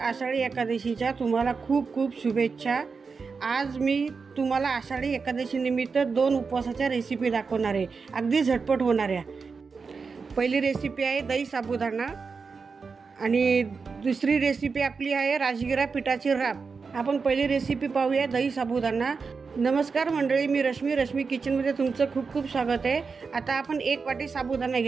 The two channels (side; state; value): left; quieter; 5.0 dB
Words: एकादशीच्या तुम्हाला खूप खूप शुभेच्छा। आज मी तुम्हाला आषाढी एकादशी निमित्त 2 उपवासाच्या रेसिपी दाखवणार आहे, अगदी झटपट होणाऱ्या। पहिली रेसिपी आहे दही साबुदाणा आणि दुसरी रेसिपी आपली आहे राजगिरा पिठाची राब। आपण पहिली रेसिपी पाहूया, दही साबुदाणा। नमस्कार मंडळी, मी रश्मी किचनमध्ये तुमचं खूप खूप स्वागत आहे। आता आपण 1 वाटी साबुदाणा